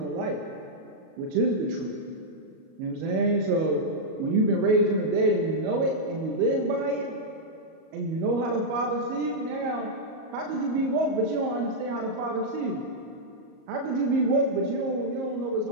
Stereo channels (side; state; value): left; late; 37 ms